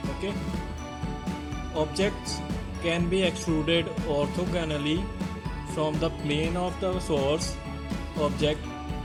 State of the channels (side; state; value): both; identical; correlation 1.00